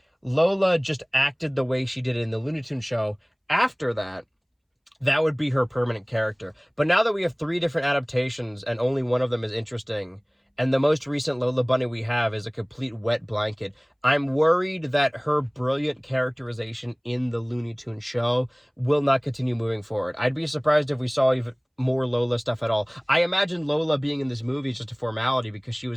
Lola just acted the way she did in the Looney Tunes show, after that, that would be her permanent character. But now that we have 3 different adaptations and only one of them is interesting, and the most recent Lola Bunny we have is a complete wet blanket, I'm worried that her brilliant characterization in the Looney Tunes show will not continue moving forward. I'd be surprised if we saw even more Lola stuff at all. I imagine Lola being in this movie is just a formality because she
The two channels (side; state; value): both; identical; correlation 1.00